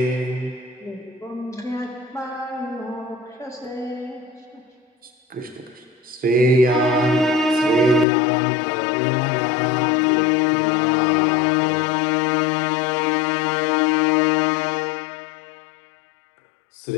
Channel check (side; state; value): right; drops out; at 8.1 s